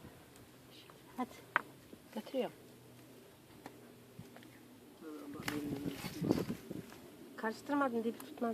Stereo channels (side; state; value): both; identical; correlation 1.00